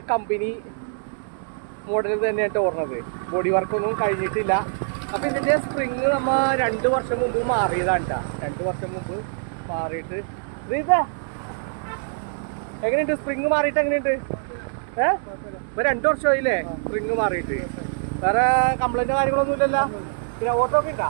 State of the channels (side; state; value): left; silent; digital silence